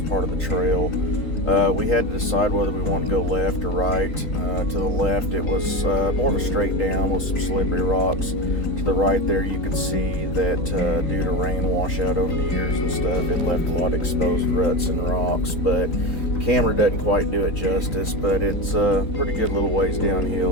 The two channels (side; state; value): right; late; 3.9 ms